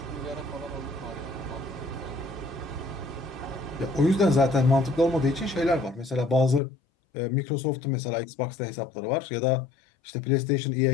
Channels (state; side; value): drops out; right; at 6.6 s